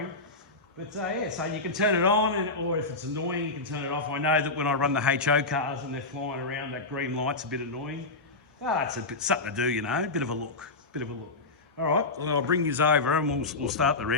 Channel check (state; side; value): quieter; right; 3.3 dB